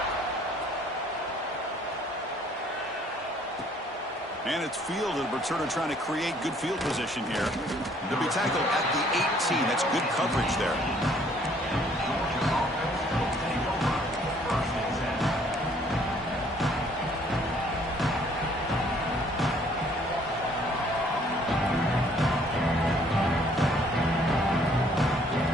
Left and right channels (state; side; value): normal; both; correlation 0.61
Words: And it's fielded. Returner trying to create good field position here. They'll be tackled at the 18. That's good coverage there.